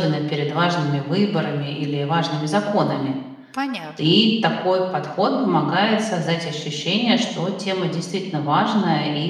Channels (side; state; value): both; identical; correlation 1.00